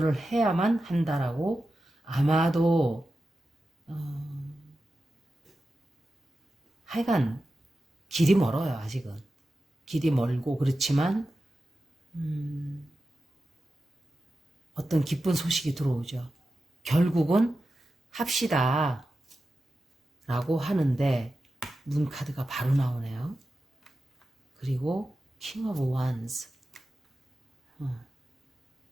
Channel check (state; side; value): normal; both; correlation 0.92